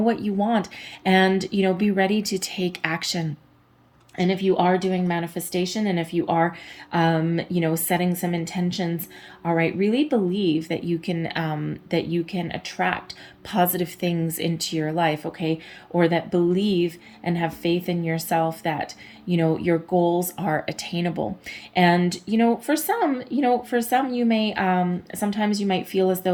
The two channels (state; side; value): identical; both; correlation 1.00